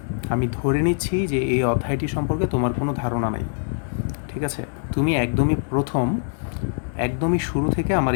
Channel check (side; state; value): right; silent; digital silence